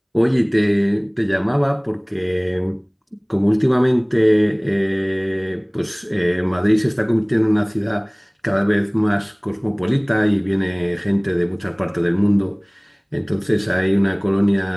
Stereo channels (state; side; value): identical; both; correlation 1.00